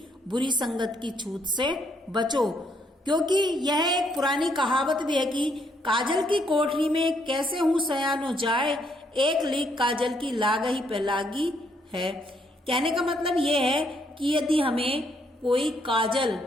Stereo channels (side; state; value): both; normal; correlation 0.72